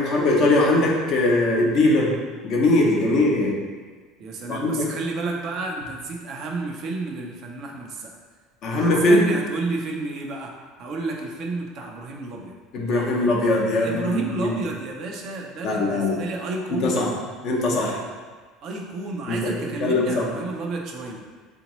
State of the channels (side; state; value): both; normal; correlation 0.53